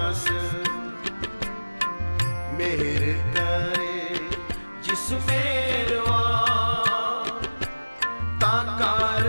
मेरे करे जिस मेरवा ता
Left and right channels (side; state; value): both; inverted; correlation -1.00